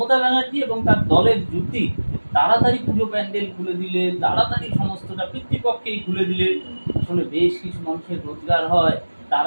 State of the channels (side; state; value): both; inverted; correlation -1.00